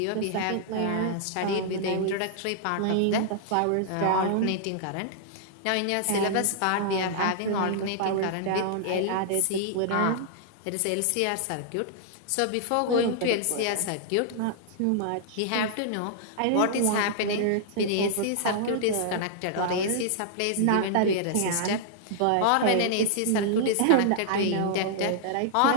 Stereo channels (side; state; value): both; different; correlation -0.01